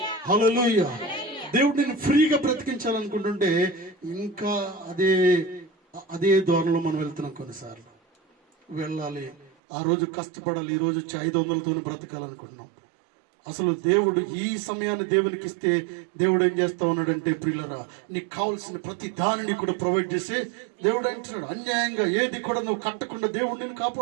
హల్లెలూయా. దేవుడు నిన్ను ఫ్రీగా బ్రతికించాలనుకుంటుంటే ఇంకా అదే ధోరణిలో మనం వెళ్తున్నాం. కొన్నిసార్లు వెళ్ళాలి, ఆ రోజు కష్టపడాలి, ఈ రోజు 500లతో బ్రతకాలనుకుంటున్నాం. అసలు దేవుడు ఈ సమయాన్ని దేవునికి ఇస్తే దేవుడు ఏం చేస్తా ఉన్నాడంటే, ప్రియులరా, నీకు కావాల్సిన ప్రతి దానిని కూడా ప్రొవైడ్ చేసి దేవుడు అంటున్నాడు, అన్యాయంగా ఏది కూడా నువ్వు కట్టకుండా దేవుడు నిన్ను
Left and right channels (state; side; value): drops out; left; at 9.5 s